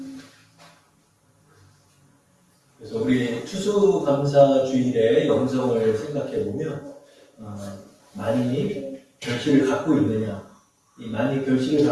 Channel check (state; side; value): identical; both; correlation 1.00